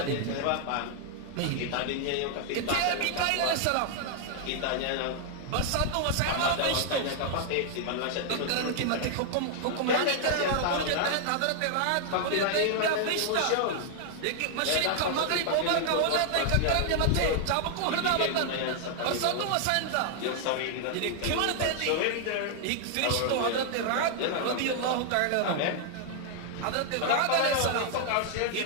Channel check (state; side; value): different; both; correlation 0.00